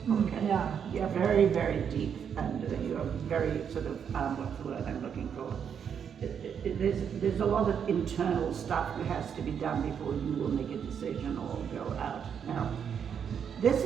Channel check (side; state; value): left; quieter; 7.7 dB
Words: Okay. Yeah. You're very, very deep, and you're very sort of what's the word I'm looking for? There's a lot of internal stuff that has to be done before you will make a decision or go out. Now, this